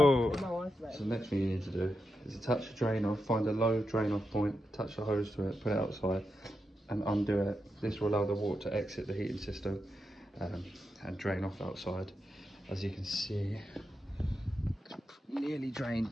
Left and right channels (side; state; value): both; normal; correlation 0.87